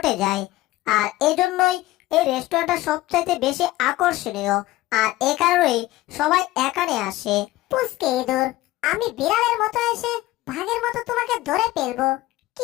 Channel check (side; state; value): right; quieter; 17.3 dB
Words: যায়। আর এজন্যই এই রেস্টুরেন্টটা সবচাইতে বেশি আকর্ষণীয়। আর এ কারণেই সবাই এখানে আসে। পুচকে ইঁদুর, আমি বিড়ালের মতো এসে ভাগের মতো তোমাকে ধরে ফেলবো।